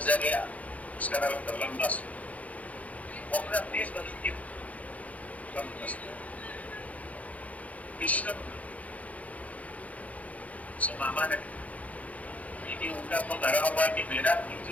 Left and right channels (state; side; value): late; right; 0.069 ms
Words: उसका नाम लंबा अपना देश बदलती कृष्ण मामा ने लेकिन उनका तो लगा हुआ कि मेरा